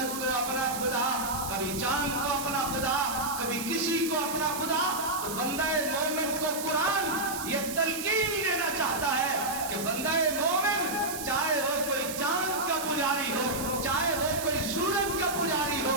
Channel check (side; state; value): right; noise; hiss, 8 dB below the sound